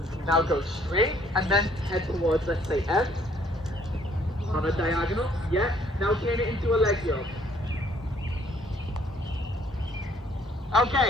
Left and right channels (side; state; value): both; normal; correlation 0.63